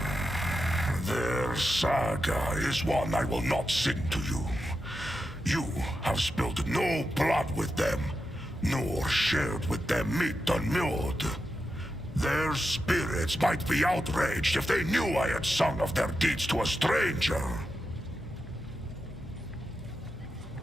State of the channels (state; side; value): normal; both; correlation 0.88